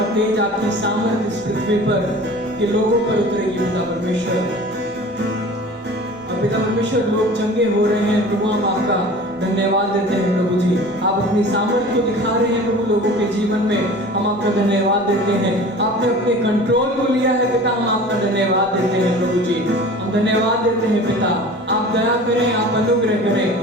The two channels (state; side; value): normal; both; correlation 0.41